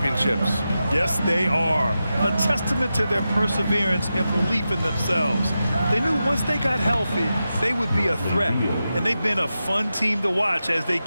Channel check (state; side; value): inverted; both; correlation -0.91